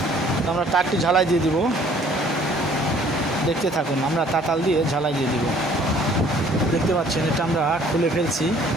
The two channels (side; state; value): both; normal; correlation 0.57